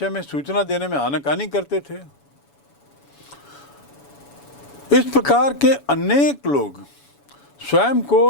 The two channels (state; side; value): late; right; 7.1 ms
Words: में सूचना देने में आनाकानी करते थे। इस प्रकार के अनेक लोग स्वयं